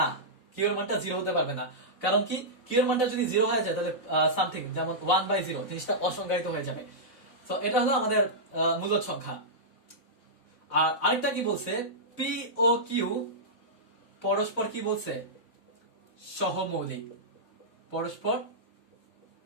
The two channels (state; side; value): late; right; 4.0 ms